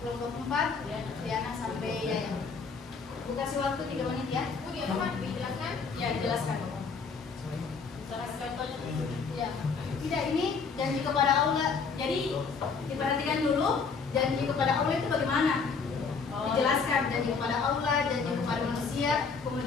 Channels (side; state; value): right; quieter; 5.2 dB